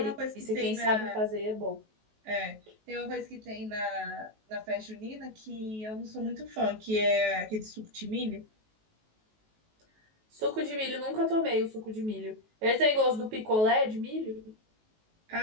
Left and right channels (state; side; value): late; left; 19 ms